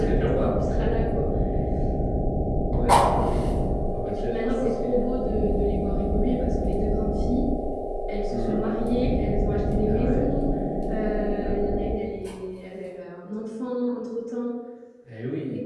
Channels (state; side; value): identical; both; correlation 1.00